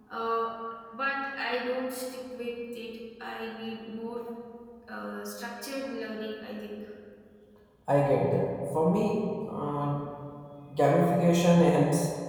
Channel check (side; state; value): both; identical; correlation 1.00